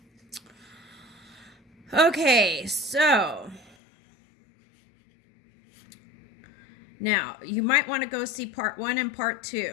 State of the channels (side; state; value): right; drops out; at 3.8 s